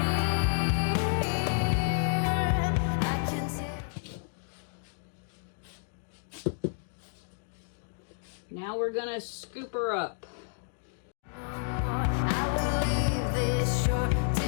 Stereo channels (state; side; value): silent; right; digital silence